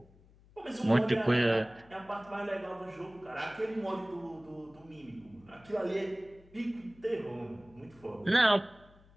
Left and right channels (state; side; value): noise; left; hum, 26 dB below the sound